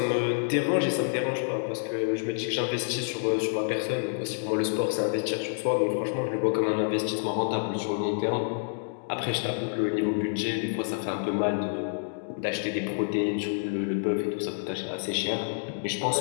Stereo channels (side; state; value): right; silent; digital silence